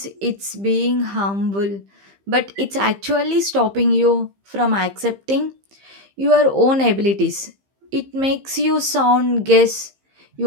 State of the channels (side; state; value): left; late; 15 ms